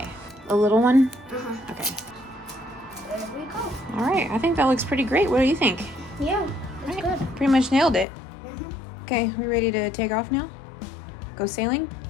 A little one? Uh-huh. Okay. There we go. All right. I think that looks pretty great. What do you think? Yeah, that's All right. good. Pretty much nailed it. Mm-hmm. Okay, we ready to take off now? Go sailing?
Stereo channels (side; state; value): right; drops out; at 8.1 s